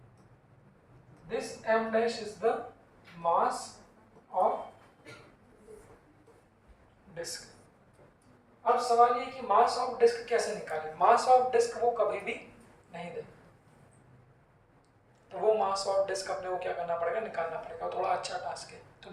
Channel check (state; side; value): identical; both; correlation 1.00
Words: This m dash is the mass of disk। अब सवाल ये कि मास ऑफ डिस्क कैसे निकालें। मास ऑफ डिस्क वो कभी भी नहीं दे, तो वो मास ऑफ डिस्क अपने को क्या करना पड़ेगा, निकालना पड़ेगा। थोड़ा अच्छा टास्क है। तो